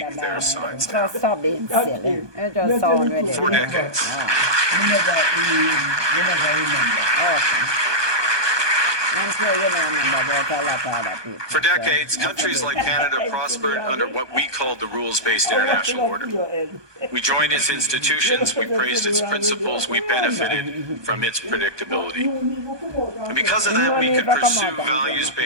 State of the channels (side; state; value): left; late; 1.2 ms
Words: their signs down. Stop being silly. It just sounds ridiculous. For decades. You never remember. Okay. I'm sure you don't remember about a lot of other people. For decades, countries like Canada prospered under what we called the rules-based international order. We joined its institutions, we praised its principles, we benefited from its predictability. And because of that, we could pursue